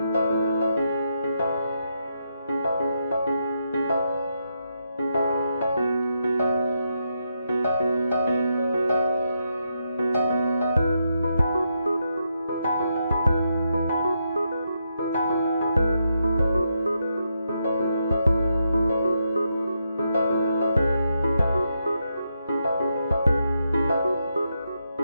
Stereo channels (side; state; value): both; inverted; correlation -0.82